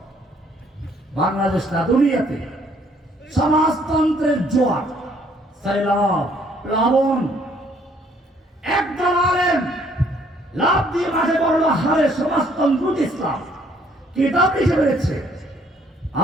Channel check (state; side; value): normal; both; correlation 0.64